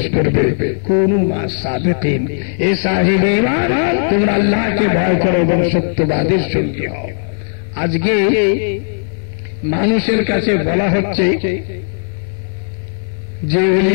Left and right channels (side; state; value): right; silent; 63 dB below the other